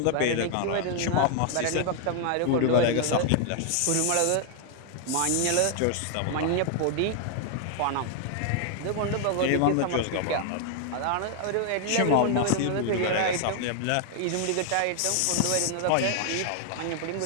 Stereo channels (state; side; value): different; both; correlation 0.00